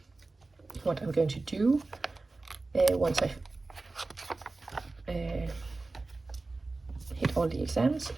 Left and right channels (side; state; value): left; quieter; 3.4 dB